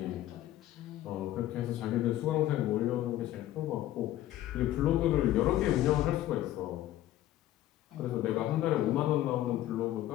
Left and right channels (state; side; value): quieter; right; 13.9 dB